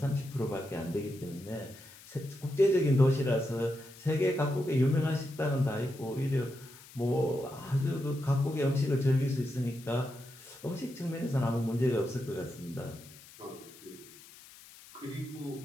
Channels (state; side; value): noise; left; hiss, 20 dB below the sound